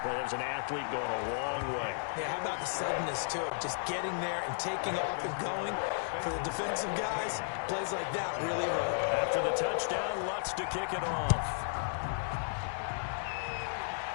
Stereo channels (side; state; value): right; silent; digital silence